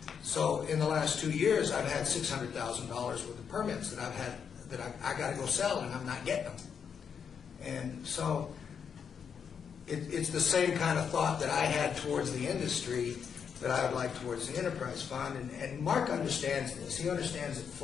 So in the last 2 years, I've had $600,000 worth of permits that I got to go sell, and I'm not getting them. And so it's the same kind of thought that I had towards the industry that I would like towards the enterprise fund. And Mark understands this. He understands it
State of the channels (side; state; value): right; quieter; 7.0 dB